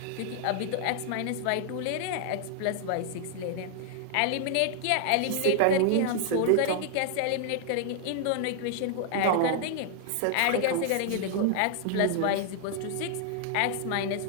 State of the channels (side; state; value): both; different; correlation 0.00